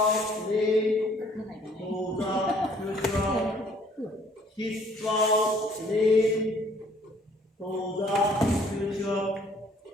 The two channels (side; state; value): both; normal; correlation 0.59